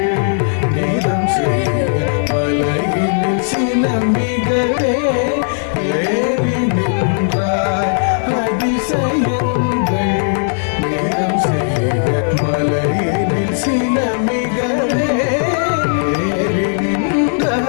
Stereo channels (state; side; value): silent; right; 67 dB below the other